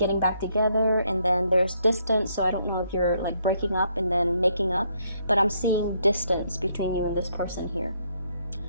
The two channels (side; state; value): both; inverted; correlation -0.72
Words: back together, and then there's distance. So I don't know if you're like breaking up and then making up, but I'm seeing distance between you and this person here.